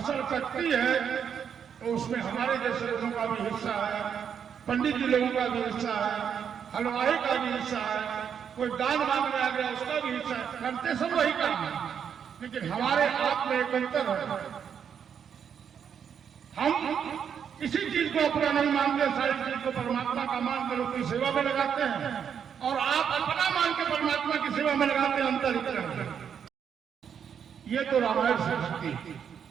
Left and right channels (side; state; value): left; quieter; 7.8 dB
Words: कटती है, तो उसमें हमारे जैसे लोगों का भी हिस्सा है, पंडित जी लोगों का भी हिस्सा है, हलवाई का भी हिस्सा है, कोई दान मांगने आ गया उसका भी हिस्सा है। करते सब वही काम है, लेकिन हमारे आप में एक अंतर है। हम किसी चीज को अपना नहीं मानते, सारी चीज को परमात्मा का मान कर उसकी सेवा में लगाते हैं, और आप अपना मान के परमात्मा की सेवा में लगाते हैं। अंतर इतना है। ये तो रामायण से भक्ति।